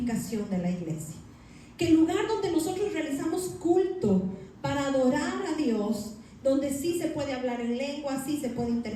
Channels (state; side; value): identical; both; correlation 1.00